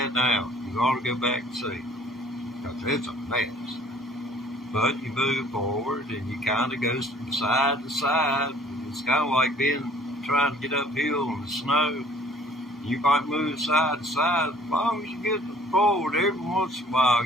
now, you ought to go back and see, because it's a mess. But you move forward and you kind of go from side to side. It's kind of like trying to get uphill in the snow. You might move side to side. As long as you get forward, every once in a while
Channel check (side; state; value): both; normal; correlation 0.55